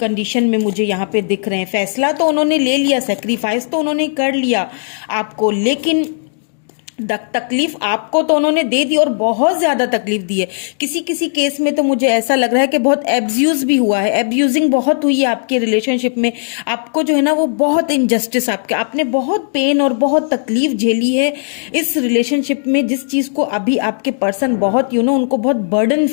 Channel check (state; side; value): silent; right; digital silence